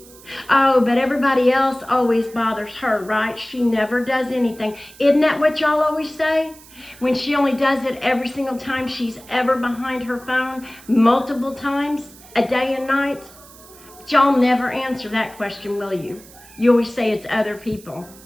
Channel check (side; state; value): right; noise; hiss, 22 dB below the sound